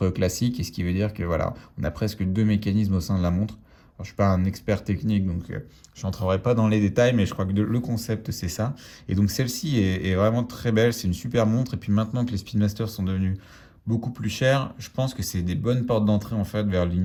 classique. Et ce qui veut dire que voilà, on a presque 2 mécanismes au sein de la montre. Alors, je ne suis pas un expert technique, donc je n'entrerai pas dans les détails, mais je crois que le concept, c'est ça. Et donc celle-ci est vraiment très belle. C'est une super montre. Et puis maintenant que les Speedmasters sont devenus beaucoup plus chers, je pense que c'est des bonnes portes d'entrée en fait vers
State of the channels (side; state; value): both; identical; correlation 1.00